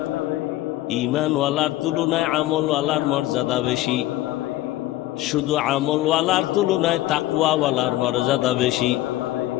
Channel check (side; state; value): right; quieter; 16.0 dB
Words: ঈমানওয়ালার তুলনায় আমলওয়ালার মর্যাদা বেশি, শুধু আমলওয়ালার তুলনায় তাকওয়াওয়ালার মর্যাদা বেশি।